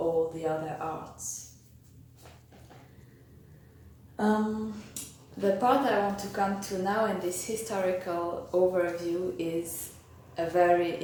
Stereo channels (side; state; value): both; identical; correlation 1.00